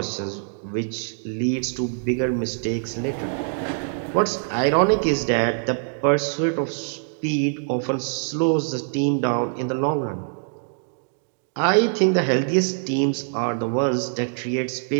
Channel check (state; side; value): silent; left; digital silence